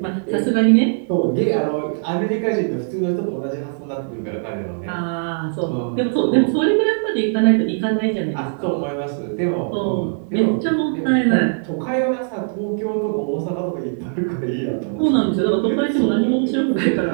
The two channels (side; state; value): left; silent; digital silence